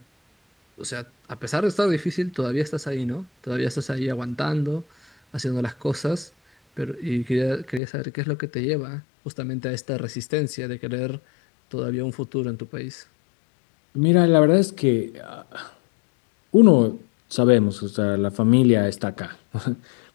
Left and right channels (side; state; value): right; drops out; at 7.8 s